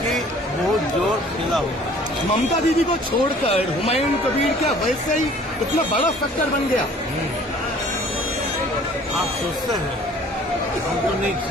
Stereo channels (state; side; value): normal; both; correlation 0.52